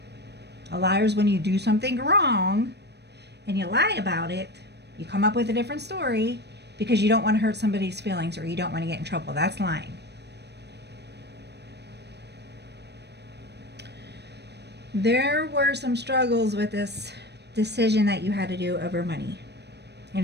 A liar is when you do something wrong and you lie about it. You come up with a different story because you don't want to hurt somebody's feelings or you don't want to get in trouble. That's lying. There were some struggles with this decision that you had to do over money,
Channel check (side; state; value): left; late; 0.49 ms